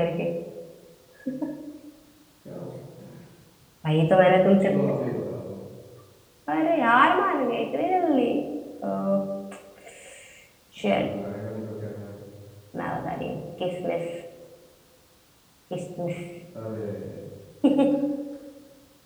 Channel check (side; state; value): both; identical; correlation 1.00